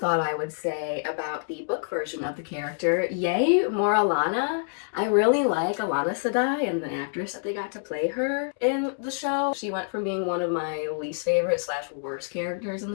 I would say about the book version of the character, yay, more Alana. I really like Alana Sedai and the actress that they got to play her in the show. She went from being one of my least favorite / worst characters in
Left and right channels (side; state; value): right; silent; digital silence